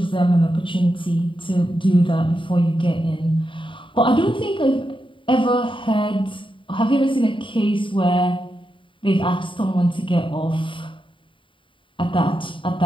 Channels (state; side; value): late; right; 0.25 ms